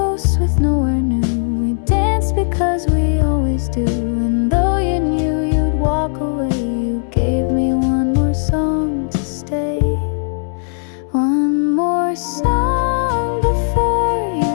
with nowhere new. We danced because we always do. And though you knew you'd walk away, you gave me one more song to stay. One more song before you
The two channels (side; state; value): right; silent; digital silence